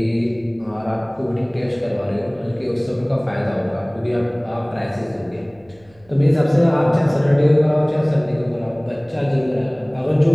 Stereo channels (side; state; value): right; noise; hum, 30 dB below the sound